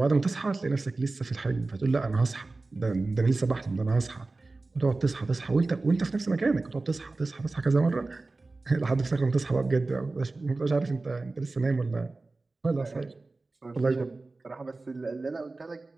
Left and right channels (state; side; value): quieter; left; 3.4 dB